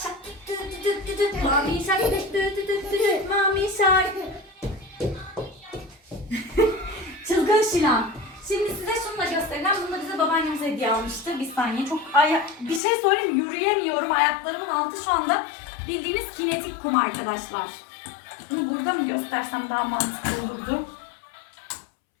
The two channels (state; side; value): drops out; right; at 12.8 s